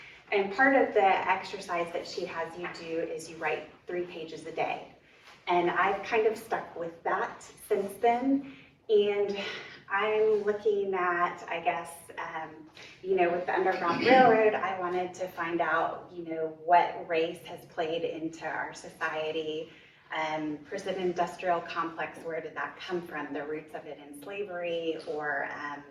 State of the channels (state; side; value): identical; both; correlation 1.00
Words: And part of the exercise that she has you do is you write 3 pages a day. And I've kind of stuck with that since then. And I'm looking at, I guess, with the Underground Railroad, I wanted to find out, what race has played into our society. Prison industrial complex, where did that come from? The roots of it in slavery, or